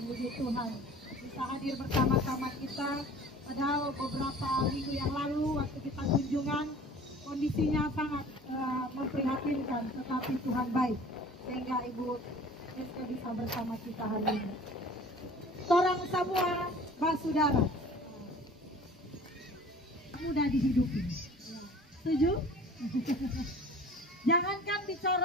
puji Tuhan. Bisa hadir bersama-sama kita, padahal beberapa minggu yang lalu waktu kita kunjungan, kondisinya sangat memprihatinkan, tetapi Tuhan baik. Sehingga Ibu Meiska bisa bersama kita hari ini. Torang semua basudara mudah dihidupi. Setuju? Jangankan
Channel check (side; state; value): both; normal; correlation 0.46